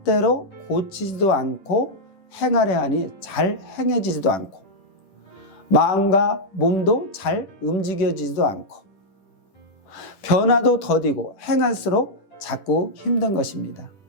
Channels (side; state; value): right; late; 10 ms